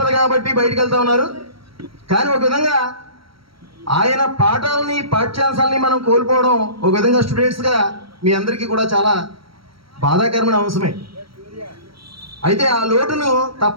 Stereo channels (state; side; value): late; left; 0.75 ms